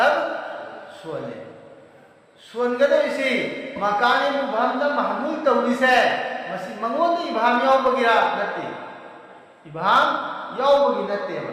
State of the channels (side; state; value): both; identical; correlation 1.00